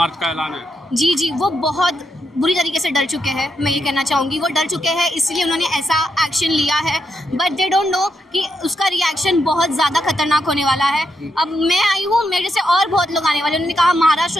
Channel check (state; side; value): normal; both; correlation 0.82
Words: का ऐलान है। जी, वो बहुत बुरी तरीके से डर चुके हैं, मैं ये कहना चाहूँगी। वो डर चुके हैं, इसलिए उन्होंने ऐसा एक्शन लिया है, बट दे डोंट नो कि उसका रिएक्शन बहुत ज़्यादा खतरनाक होने वाला है। अब मैं आई हूँ, मेरे से और बहुत लोग आने वाले। उन्होंने कहा